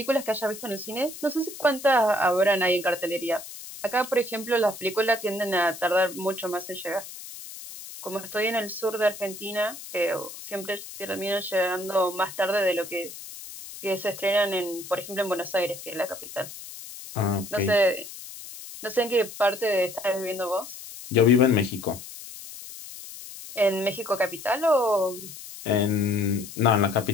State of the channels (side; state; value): left; noise; hiss, 13 dB below the sound